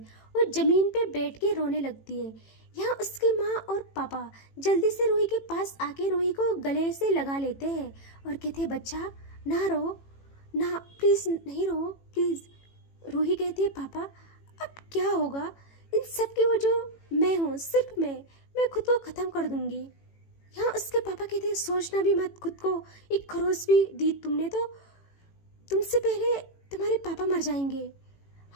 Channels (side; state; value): right; late; 18 ms